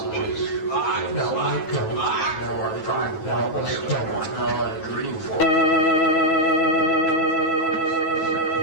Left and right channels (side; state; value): right; late; 9.2 ms